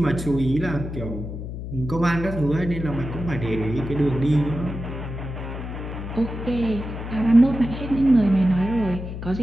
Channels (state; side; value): noise; left; hum, 7 dB below the sound